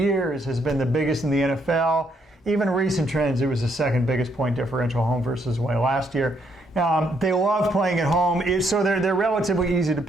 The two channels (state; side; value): normal; both; correlation 0.73